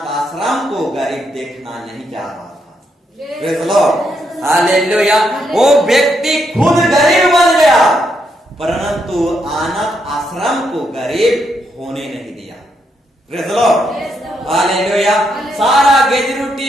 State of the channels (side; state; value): both; normal; correlation 0.78